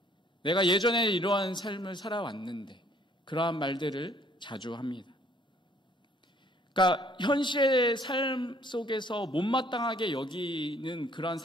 내가 예전에 이러한 삶을 살아왔는데, 그러한 말들을 자주 합니다. 그러니까 현실의 삶 속에서 못마땅하게 여기는 그러한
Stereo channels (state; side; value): normal; both; correlation 0.61